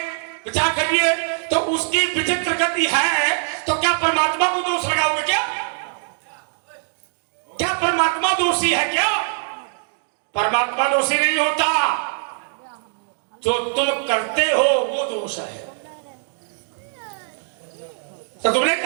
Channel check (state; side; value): silent; left; digital silence